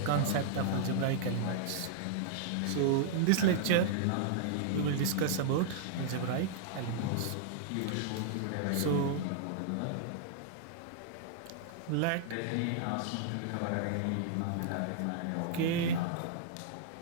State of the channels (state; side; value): different; both; correlation -0.01